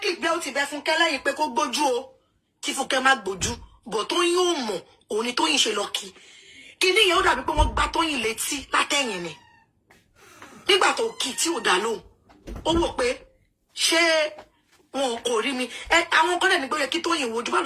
gbé ó ti bẹ Fúnkẹ́ lẹ́yìn pé kó gbójú o kí Fúnkẹ́ má gbójú but Tóyìn ò mọ̀ òun ni Tóyìn ṣe lọ kí níyẹn ó dàbí pé wọ́n gbá Tóyìn létí látẹ̀yìn ni nígbà tó kì tí ò dá lóhùn ó wò pé ṣé wọn kò rí mi àwọn kan dẹ̀ ní pé kí Tóyìn wojú bá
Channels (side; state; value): both; identical; correlation 1.00